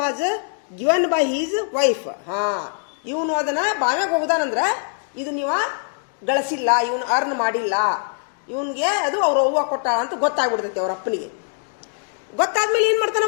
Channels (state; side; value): silent; right; 64 dB below the other